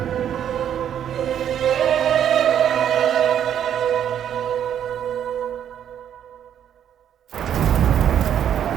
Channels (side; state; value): left; quieter; 9.6 dB